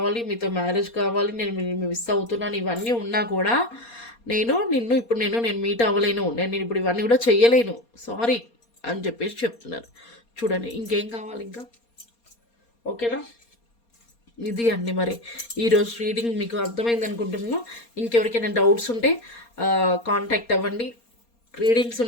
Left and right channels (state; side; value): late; right; 4.3 ms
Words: మీతో మ్యారేజ్ కావాలి, నేను మిస్ అవుతున్నాను, ఇవన్నీ ఉన్నా కూడా నేను మీట్ అవ్వలేను, నేను ఇప్పుడు ఇవన్నీ కూడా చెయ్యలేను, సారీ అని చెప్పేసి చెప్తున్నారు. చూడండి ఇంకేం కావాలి ఇంకా, ఓకేనా? ఇది అండి మరి ఈరోజు రీడింగ్ మీకు అర్థమైంది అనుకుంటున్నాను. ఇంకెవరికైనా డౌట్స్ ఉంటే కాంటాక్ట్ అవ్వండి, రీడింగ్స్